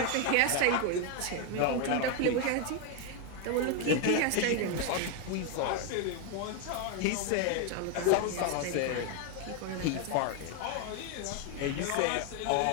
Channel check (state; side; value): different; both; correlation 0.01